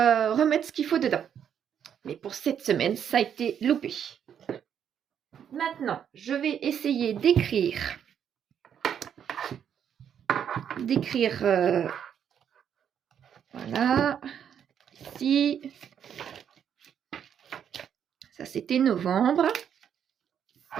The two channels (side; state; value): left; quieter; 8.6 dB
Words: remettre ce qu'il faut dedans. Mais pour cette semaine, ça a été loupé. Maintenant, je vais essayer d'écrire voilà, ici, ça c'était novembre,